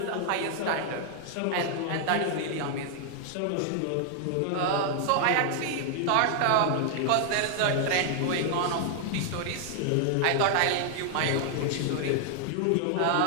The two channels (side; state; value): both; different; correlation 0.00